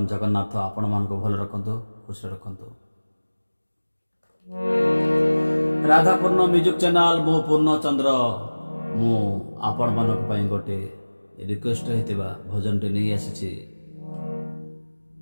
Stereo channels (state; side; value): inverted; both; correlation -1.00